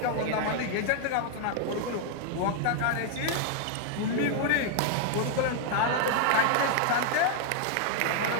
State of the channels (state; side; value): different; both; correlation 0.00